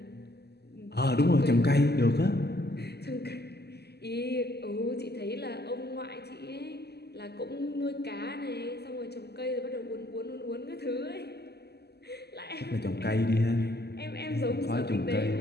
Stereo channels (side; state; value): right; late; 0.47 ms